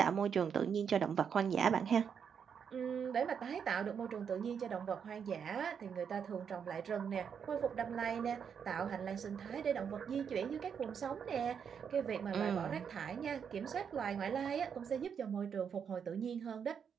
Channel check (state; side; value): quieter; left; 7.2 dB